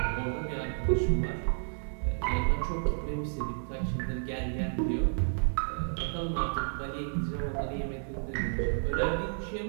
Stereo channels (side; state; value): left; silent; 57 dB below the other